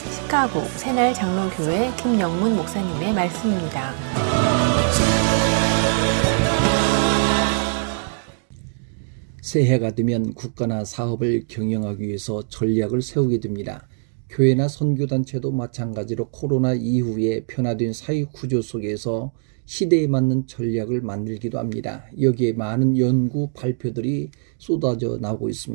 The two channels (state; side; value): silent; left; digital silence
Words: 새날 장로교회 김영문 목사님의 말씀입니다. 새해가 되면 국가나 사업을 경영하기 위해서 전략을 세우게 됩니다. 교회나 선교단체도 마찬가지로 코로나 이후에 변화된 사회구조 속에서 시대에 맞는 전략을 만들기도 합니다. 여기에 많은 연구 발표들이 쏟아져 나오고